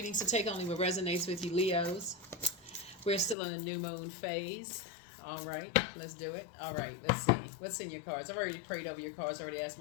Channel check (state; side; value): drops out; right; at 3.4 s